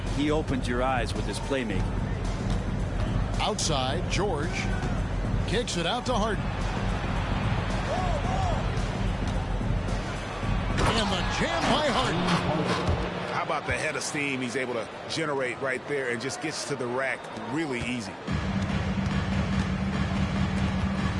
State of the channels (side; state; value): both; identical; correlation 1.00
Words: he opens your eyes with his playmaking. Outside, George kicks it out to Harden. And the jam by Harden. How about the head of steam he's able to generate right there and just gets to the rack really easy.